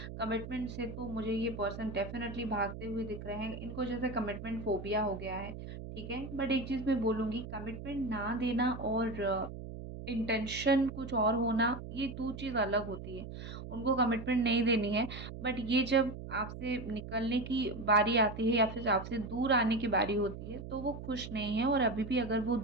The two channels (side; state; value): right; noise; hum, 10 dB below the sound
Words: कमिटमेंट से तो मुझे ये पर्सन डेफ़िनेटली भागते हुए दिख रहे हैं। इनको जैसे कमिटमेंट फ़ोबिया हो गया है, ठीक है? बट एक चीज़ मैं बोलूँगी कमिटमेंट ना देना और इंटेंशन कुछ और होना, ये 2 चीज़ अलग होती है। उनको कमिटमेंट नहीं देनी है, बट ये जब आपसे निकलने की बारी आती है या फिर आपसे दूर आने की बारी होती है, तो वो खुश नहीं है और अभी भी अगर वो